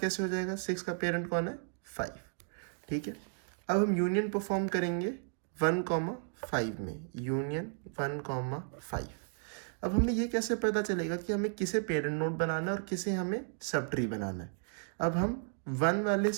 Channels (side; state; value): left; silent; 55 dB below the other